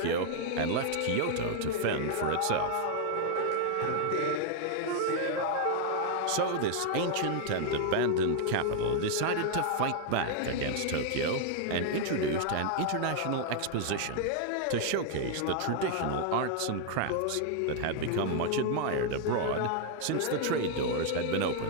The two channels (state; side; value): different; both; correlation 0.00